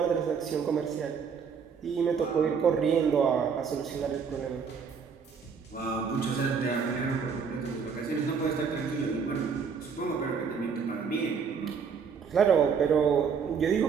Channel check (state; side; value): quieter; left; 6.2 dB